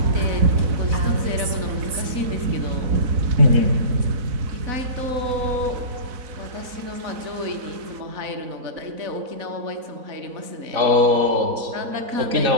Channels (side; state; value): left; late; 4.0 ms